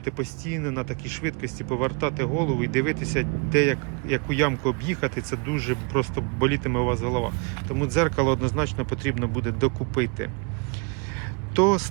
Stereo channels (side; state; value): left; quieter; 33.7 dB